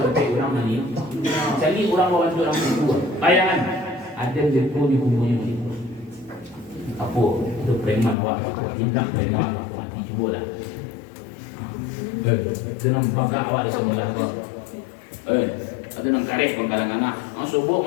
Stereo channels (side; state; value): right; drops out; at 8.2 s